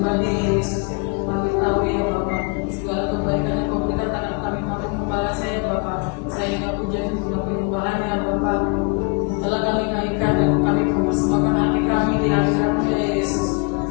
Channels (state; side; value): quieter; right; 34.1 dB